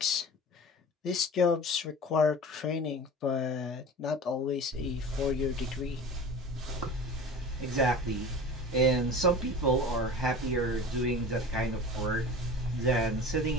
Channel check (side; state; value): both; normal; correlation 0.36